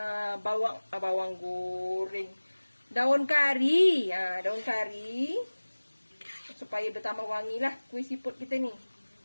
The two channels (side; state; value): both; inverted; correlation -1.00